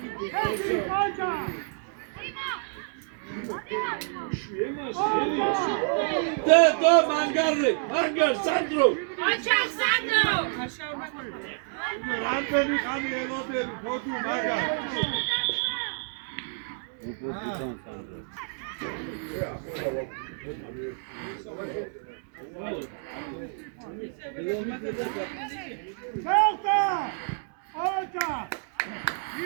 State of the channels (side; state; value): left; silent; 59 dB below the other